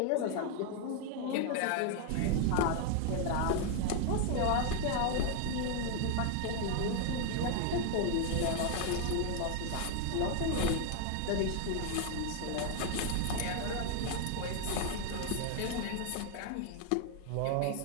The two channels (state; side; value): different; both; correlation 0.00